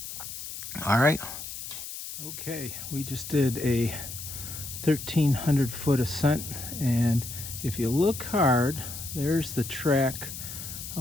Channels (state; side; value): noise; left; hiss, 9 dB below the sound